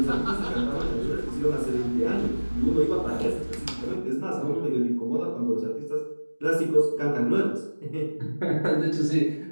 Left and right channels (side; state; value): both; inverted; correlation -1.00